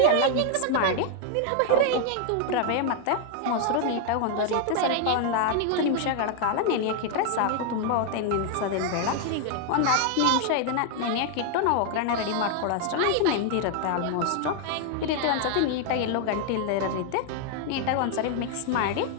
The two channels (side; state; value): both; different; correlation 0.00